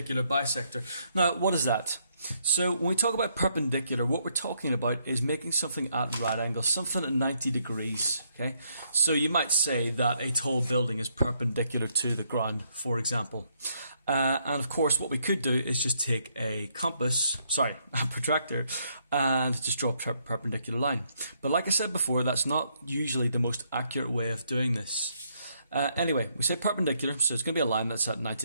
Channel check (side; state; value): both; inverted; correlation -0.73